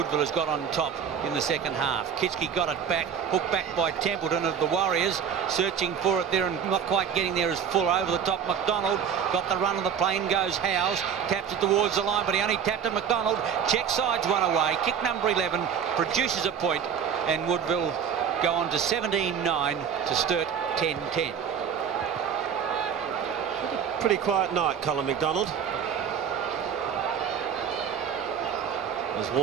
has got on top in the second half. Kitschke got it back, hooked back by Templeton of the Warriors, searching for it there and not quite getting there as full over the top. McDonald got the run of the plane, goes Howes, taps it towards the line, but he only tapped it. McDonald, check sides one away. Kick number 11 produces a point, and Woodville go on to 17-9 to Sturt 10-10. Pretty quiet night, Colin McDonald. As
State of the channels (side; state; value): left; quieter; 7.7 dB